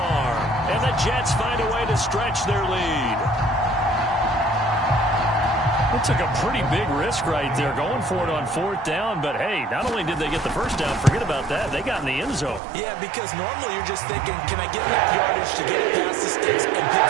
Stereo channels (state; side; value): drops out; left; at 12.6 s